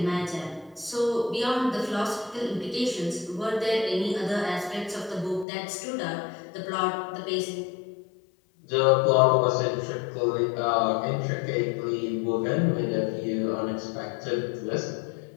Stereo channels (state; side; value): drops out; right; at 5.5 s